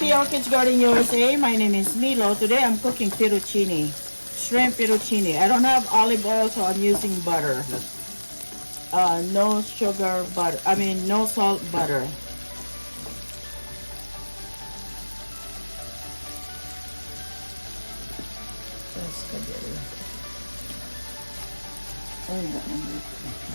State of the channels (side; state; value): both; inverted; correlation -1.00